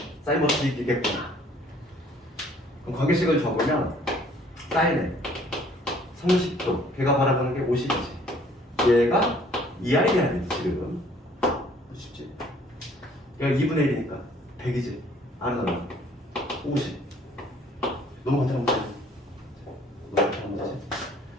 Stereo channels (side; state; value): both; normal; correlation 0.58